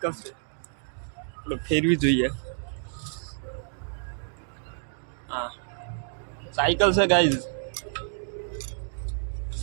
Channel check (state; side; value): silent; left; digital silence